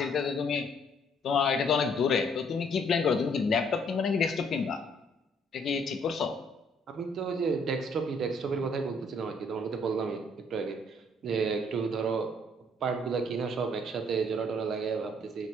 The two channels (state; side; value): normal; both; correlation 0.65